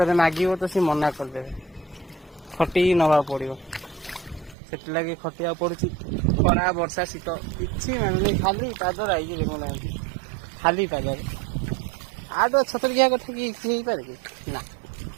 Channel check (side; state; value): left; drops out; at 4.5 s